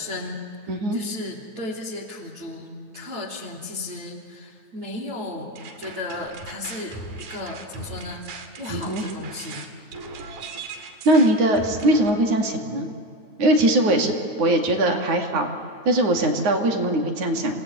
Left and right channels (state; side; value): late; left; 9.3 ms